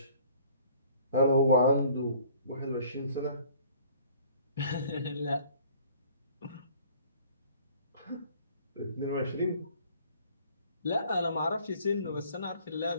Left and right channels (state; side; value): inverted; both; correlation -0.54